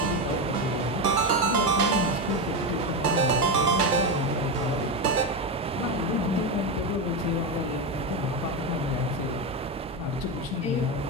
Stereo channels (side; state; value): both; normal; correlation 0.12